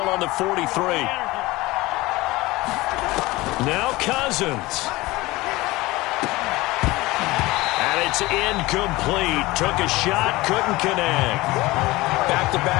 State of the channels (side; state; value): right; quieter; 20.2 dB